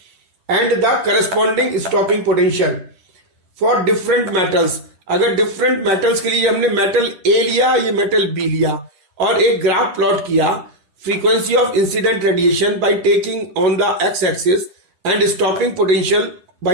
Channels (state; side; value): late; left; 10 ms